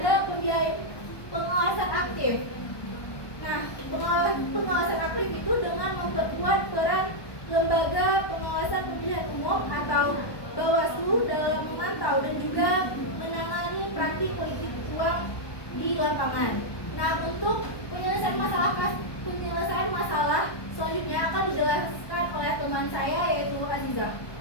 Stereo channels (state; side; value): late; right; 1.2 ms